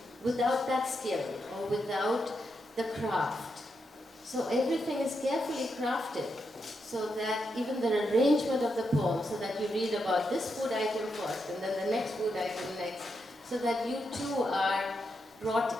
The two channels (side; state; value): both; normal; correlation 0.83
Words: without that skill or without the craft. So everything is carefully crafted so that even the arrangement of the poem, so that you read about this food item first and then the next food item next, so that you too are